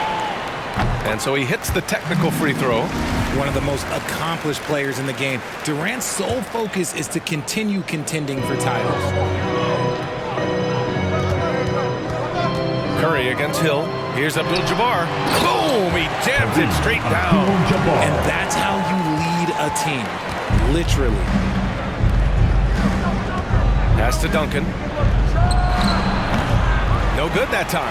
And so he hits the technical free throw. One of the most accomplished players in the game. Durant's sole focus is to continue contending for titles. Curry against Hill. Here's Abdul-Jabbar. Boom! He jams it straight down. And that's how you lead a team. Literally. Pass to Duncan. No good that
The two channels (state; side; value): identical; both; correlation 1.00